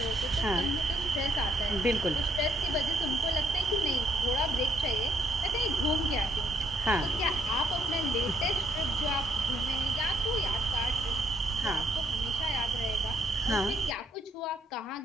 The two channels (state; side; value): normal; both; correlation 0.70